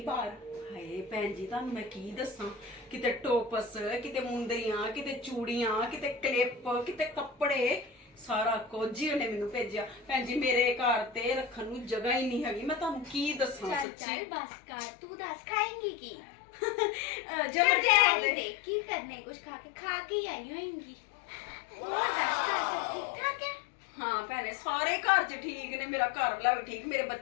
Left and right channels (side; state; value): right; drops out; at 13.9 s